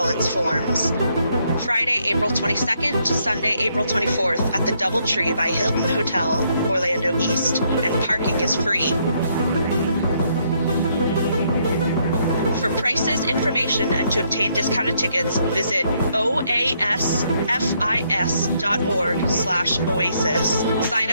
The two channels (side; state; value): both; inverted; correlation -0.72